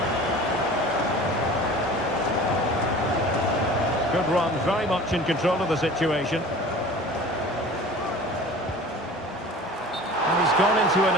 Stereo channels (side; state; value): both; normal; correlation 0.42